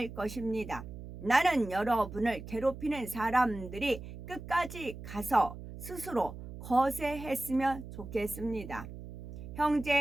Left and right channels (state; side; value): noise; right; hum, 12 dB below the sound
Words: 것입니다. 나는 여러분을 괴롭히는 사람들이 끝까지 가서 스스로 거세했으면 좋겠습니다.